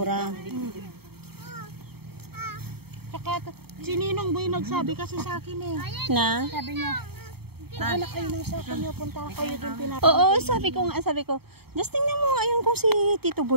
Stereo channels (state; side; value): late; left; 0.96 ms